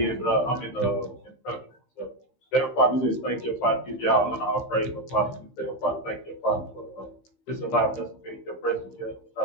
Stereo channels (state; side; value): late; right; 15 ms